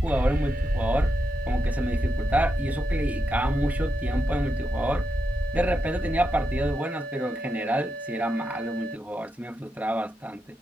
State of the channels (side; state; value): both; normal; correlation 0.85